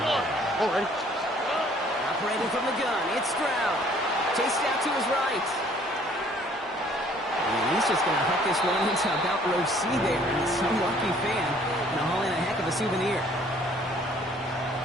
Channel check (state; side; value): normal; both; correlation 0.58